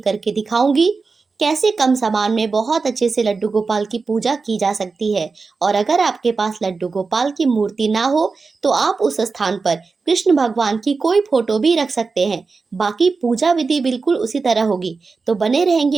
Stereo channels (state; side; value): quieter; left; 4.4 dB